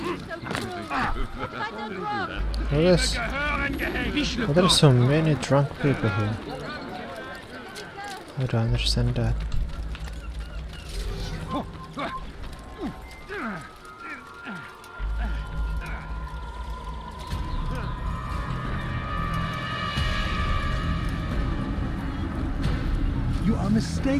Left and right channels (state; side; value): identical; both; correlation 1.00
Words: There are so many drunk people here. I don't understand that. You are are